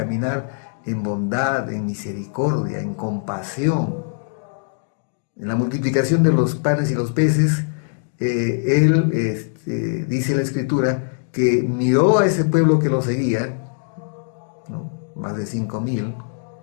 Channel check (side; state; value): right; silent; digital silence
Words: en bondad, en misericordia, en compasión. En la multiplicación de los panes y los peces, él, dice la Escritura, que miró a ese pueblo que lo seguía, ¿no? Más de 5,000,